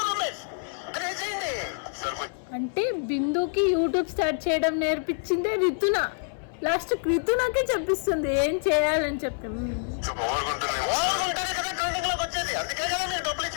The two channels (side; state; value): right; silent; 60 dB below the other